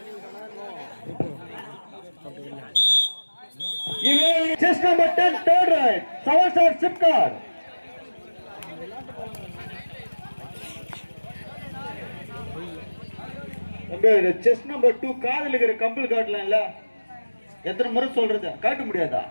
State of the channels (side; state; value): both; inverted; correlation -1.00